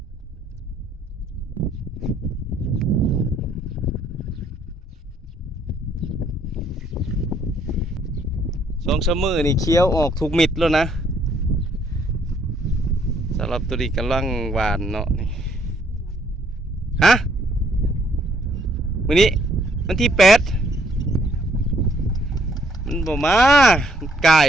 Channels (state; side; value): normal; both; correlation 0.67